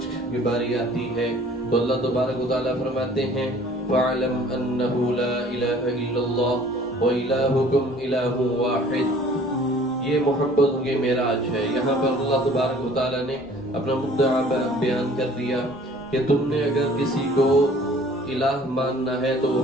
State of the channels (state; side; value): normal; both; correlation 0.52